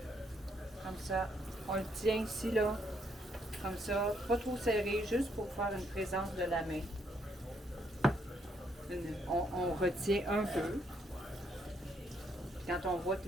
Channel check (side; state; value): both; normal; correlation 0.73